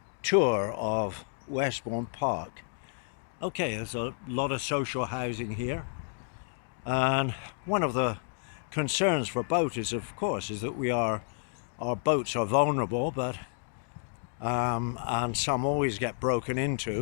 tour of Westbourne Park. Okay, there's a lot of social housing here, and one of the concerns for boaters, of course, is that our boats are vulnerable, but and some always get broken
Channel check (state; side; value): silent; right; digital silence